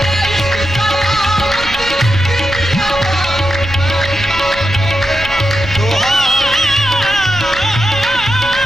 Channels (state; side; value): noise; right; rumble, 13 dB below the sound